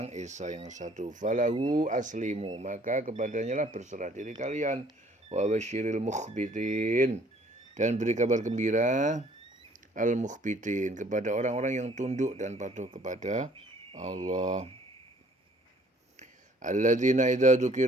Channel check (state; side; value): normal; both; correlation 0.58